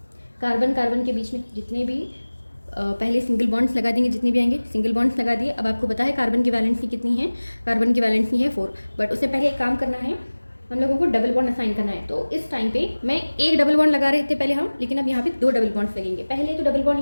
कार्बन के बीच में जितने भी पहले सिंगल बॉन्ड्स लगा देंगे, जितने भी आएंगे सिंगल बॉन्ड्स लगा दिए। अब आपको पता है कार्बन की वैलेंसी कितनी है, कार्बन की वैलेंसी है 4, बट उससे पहले एक काम करना है, हम लोगों को डबल बॉन्ड असाइन करना है। तो इस टाइम पे मैं एक डबल बॉन्ड लगा रहे थे पहले हम, लेकिन अब यहाँ पे 2 डबल बॉन्ड्स लगेंगे। पहले तो डबल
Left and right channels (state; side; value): inverted; both; correlation -1.00